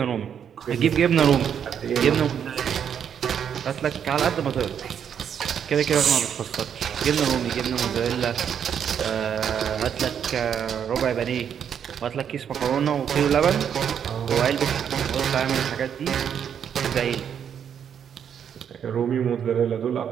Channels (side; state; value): left; quieter; 8.3 dB